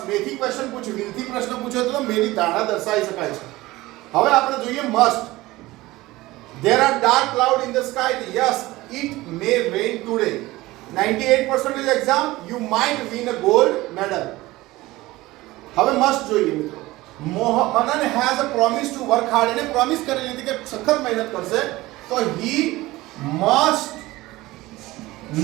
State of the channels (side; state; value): left; quieter; 18.9 dB